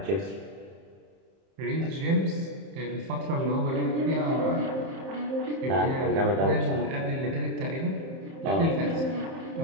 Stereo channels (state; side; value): late; left; 30 ms